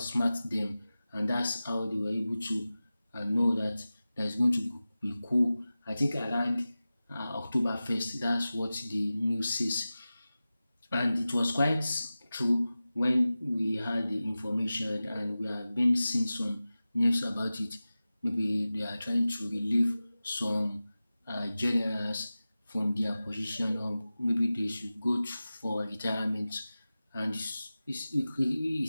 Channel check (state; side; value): inverted; both; correlation -0.96